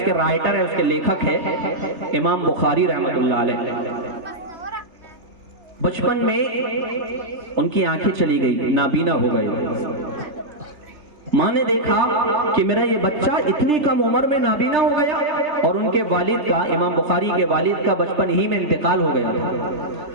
کے رائٹر ہے، اس کے لیکھک ہے امام بخاری رحمت اللہ علیہ۔ بچپن میں ان کی آنکھیں چلی گئی، نابینا ہو گئے۔ ماں نے دیکھا کہ میرا یہ بچہ اتنی کم عمر میں نابینا ہو گیا، اور ان کے والد کا، امام بخاری کے والد کا بچپن ہی میں انتقال ہو گیا تھا۔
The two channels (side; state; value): left; late; 3.3 ms